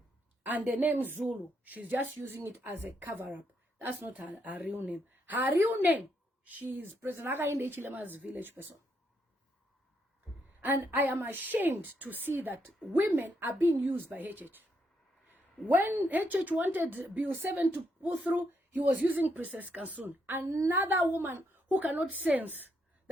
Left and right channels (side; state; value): both; normal; correlation 0.77